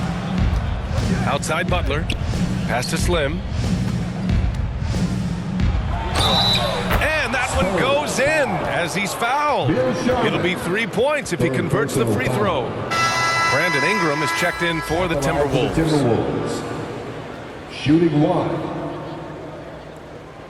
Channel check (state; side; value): identical; both; correlation 1.00